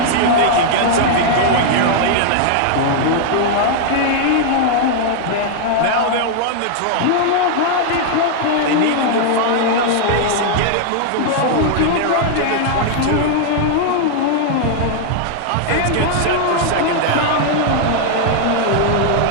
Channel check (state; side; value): different; both; correlation 0.00